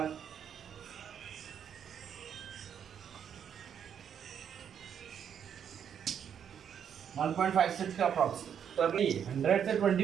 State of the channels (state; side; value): quieter; left; 8.3 dB